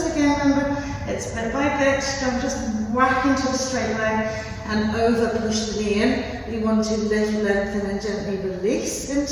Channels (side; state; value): both; identical; correlation 1.00